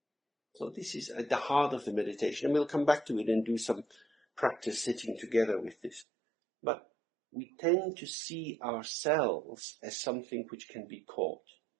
So this is at the heart of the meditation, and we'll come back to it and do some practice sitting together with this. But we tend to see ourselves as something which can be caught.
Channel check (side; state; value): left; drops out; at 6.1 s